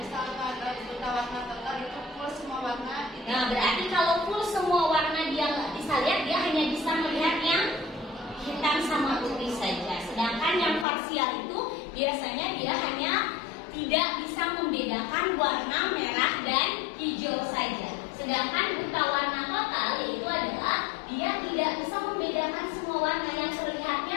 ada buta warna total itu full semua warna. Nah, berarti kalau full semua warna dia nggak bisa lihat, dia hanya bisa melihat yang hitam sama putih saja. Sedangkan yang parsial itu biasanya dia hanya tidak bisa membedakan warna merah dan hijau saja. Sedangkan buta warna total itu adalah dia tidak bisa membedakan semua warna, yang terlihatnya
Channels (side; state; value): right; drops out; at 10.9 s